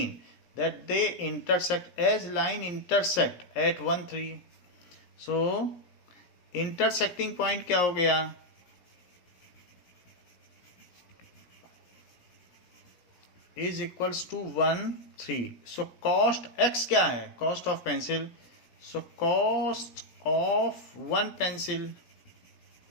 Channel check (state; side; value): late; right; 17 ms